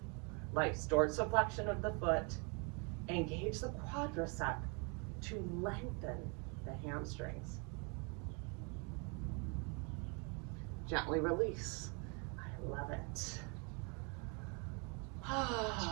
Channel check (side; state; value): left; quieter; 34.2 dB